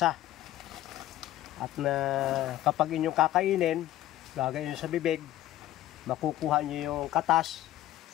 At kapag inyong kakainin, gagayin sa bibig, makukuha nyo yung katas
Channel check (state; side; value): quieter; right; 14.2 dB